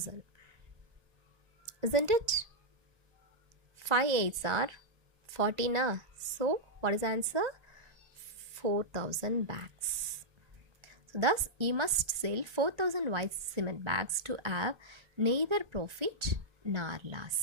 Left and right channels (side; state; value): left; late; 1.2 ms